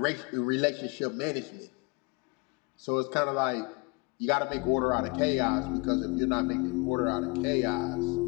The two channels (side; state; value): right; quieter; 28.4 dB